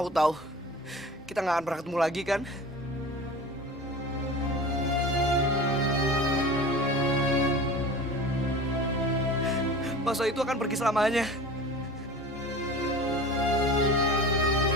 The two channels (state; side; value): normal; both; correlation 0.36